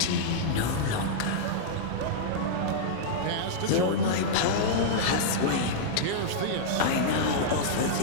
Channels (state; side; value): different; both; correlation -0.03